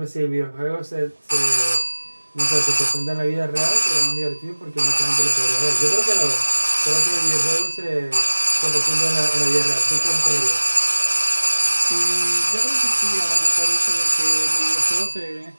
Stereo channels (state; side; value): inverted; both; correlation -1.00